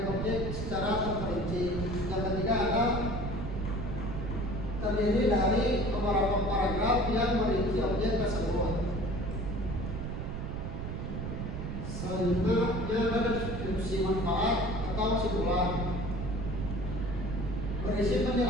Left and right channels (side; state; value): right; noise; rumble, 5 dB below the sound